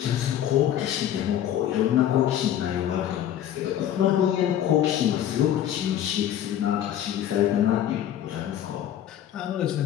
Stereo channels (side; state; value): right; quieter; 10.9 dB